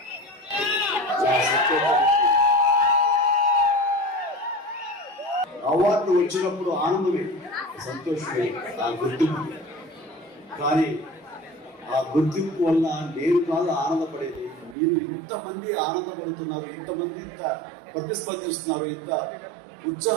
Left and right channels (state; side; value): drops out; left; at 14.8 s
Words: అవార్డు వచ్చినప్పుడు ఆనందమే, సంతోషమే, ఆ గుర్తింపు. కానీ ఆ గుర్తింపు వల్ల నేను కాదు ఆనందపడేది, మీరు ఇంతమంది ఆనందపడుతున్నారు, ఇంతమంది ఇంత ప్రతిస్పందిస్తున్నారు, ఇంత